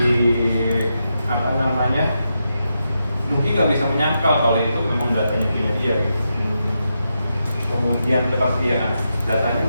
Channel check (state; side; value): inverted; both; correlation -0.85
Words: apa namanya, Nuki nggak bisa menyangkal kalau itu memang datanya punya dia gitu. Kemudian kepastian, datanya